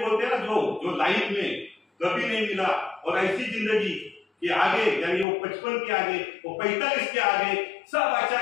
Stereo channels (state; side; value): drops out; right; at 5.2 s